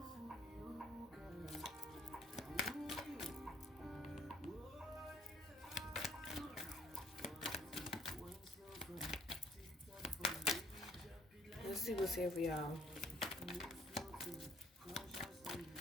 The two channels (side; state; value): both; normal; correlation 0.61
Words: Let's see what's here for y'all.